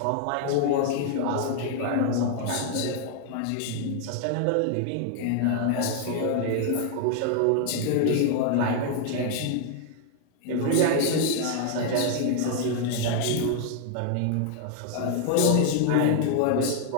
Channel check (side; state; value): both; different; correlation 0.00